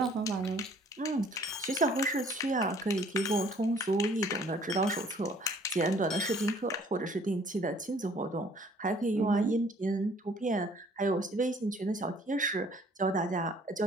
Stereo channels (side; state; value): both; normal; correlation 0.57